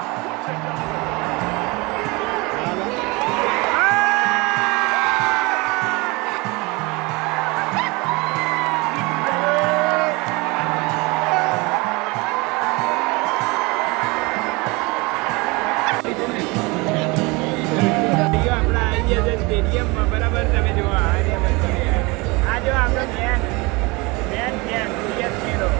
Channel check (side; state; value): left; quieter; 25.5 dB